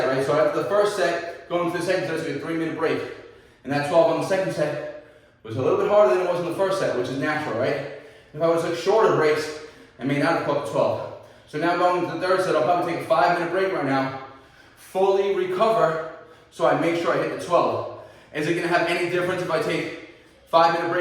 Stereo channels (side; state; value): both; identical; correlation 1.00